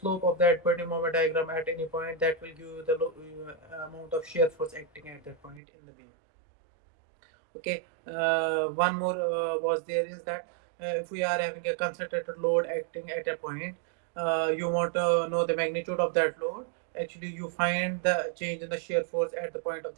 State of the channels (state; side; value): drops out; left; at 5.6 s